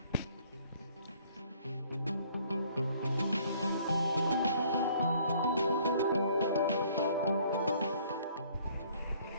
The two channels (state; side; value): inverted; both; correlation -0.59